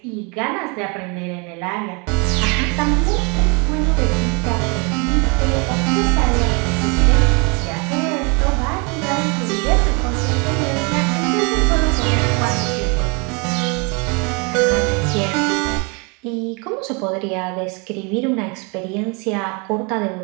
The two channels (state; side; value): quieter; left; 31.7 dB